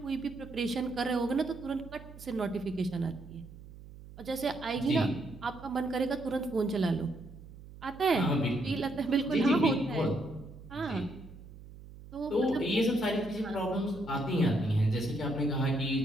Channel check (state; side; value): noise; right; hum, 17 dB below the sound